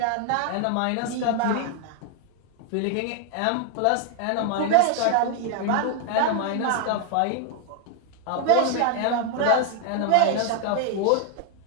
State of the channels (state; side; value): different; both; correlation 0.00